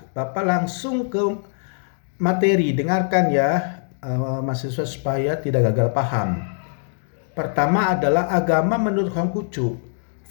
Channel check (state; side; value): silent; right; digital silence